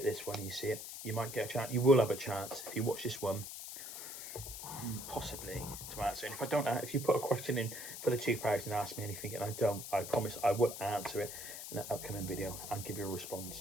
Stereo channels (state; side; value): noise; left; hiss, 9 dB below the sound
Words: this one and you see it, you might get a chance. You will have a chance if you watch this one, possibly, to answer. And if I don't, if you put a question in for the 2,000, ask me anything, and I don't, I promise I will answer it in an upcoming video and give you a